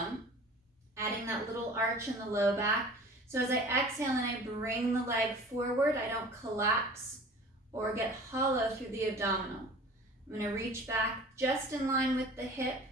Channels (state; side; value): normal; both; correlation 0.43